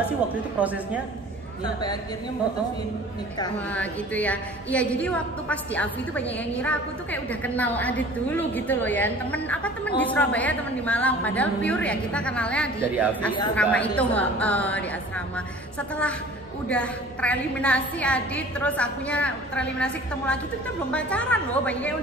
sih waktu itu prosesnya? Sampai akhirnya mutusin nikah. Wah gitu ya. Iya jadi waktu pas di Avi itu banyak yang ngira aku tuh kayak udah kenal Adit dulu gitu loh ya. Temen di Surabaya, temen di Malang. Padahal pure ya kita kenalnya di Dari Avi. asrama Iya, itu di asrama. Setelah udah tereliminasi Adit, terus akunya tereliminasi ketemu lagi tuh kita belum pacaran loh. Banyak yang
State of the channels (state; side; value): normal; both; correlation 0.46